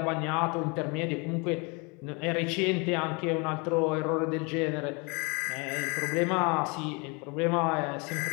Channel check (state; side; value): quieter; right; 30.1 dB